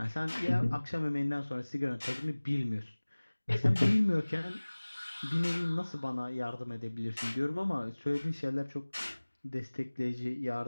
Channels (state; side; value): inverted; both; correlation -1.00